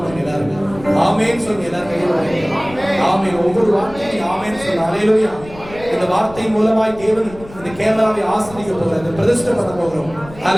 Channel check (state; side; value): noise; left; rumble, 18 dB below the sound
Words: எல்லாரும் ஆமென் சொல்லி எல்லாரும் ஆமென். ஒவ்வொரு வார்த்தையும் ஆமென் சொல்லு. ஹல்லேலூயா. இந்த வார்த்தை மூலமாய் தேவன் இந்த கேமராவை ஆசீர்வதிக்க போகிறார், பிரதிஷ்டை பண்ண போகிறோம்.